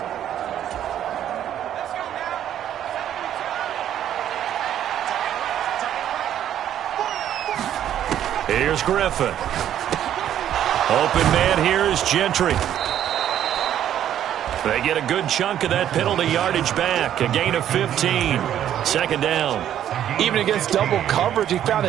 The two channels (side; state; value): left; quieter; 10.7 dB